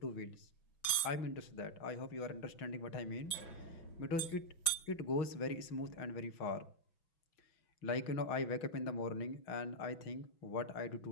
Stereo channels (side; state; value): right; late; 6.0 ms